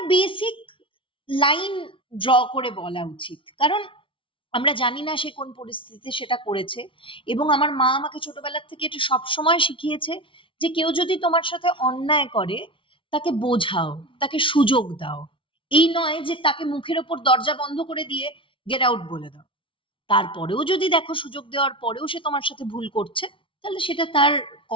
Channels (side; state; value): right; late; 0.25 ms